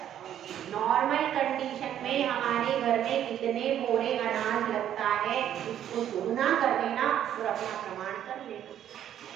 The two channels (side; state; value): left; quieter; 10.6 dB